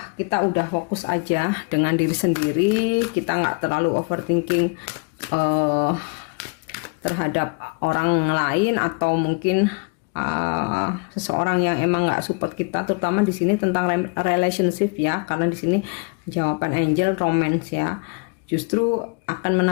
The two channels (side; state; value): right; quieter; 33.0 dB